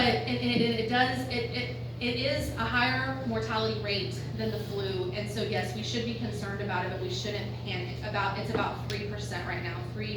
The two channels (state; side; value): identical; both; correlation 1.00